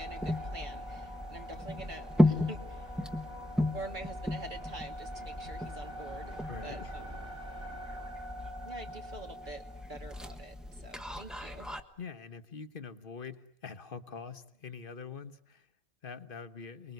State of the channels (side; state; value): both; normal; correlation 0.80